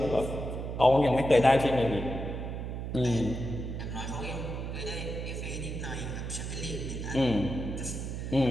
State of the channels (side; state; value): right; noise; hum, 5 dB below the sound